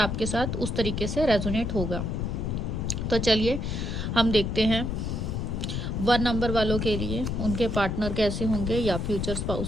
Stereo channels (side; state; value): left; noise; rumble, 2 dB below the sound